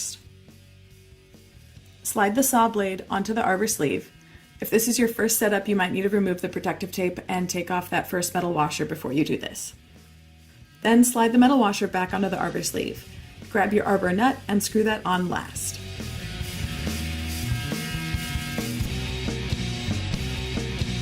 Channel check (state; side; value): identical; both; correlation 1.00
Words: Slide the saw blade onto the arbor sleeve. If this is your first setup, you might need to remove the protective tape and take off that first metal washer before you do this. Then slide the metal washer back onto the arbor sleeve. Grab your arbor nut and screw that on last.